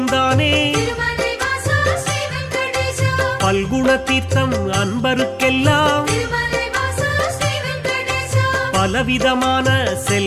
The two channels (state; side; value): identical; both; correlation 1.00